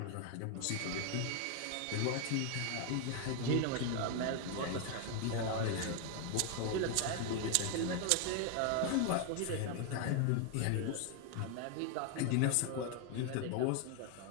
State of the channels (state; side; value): different; both; correlation 0.01